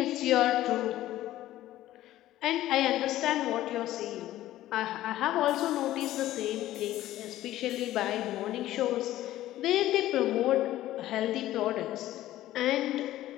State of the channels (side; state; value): right; quieter; 14.5 dB